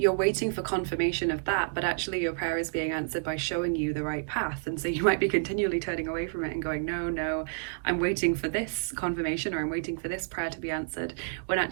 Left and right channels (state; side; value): silent; left; digital silence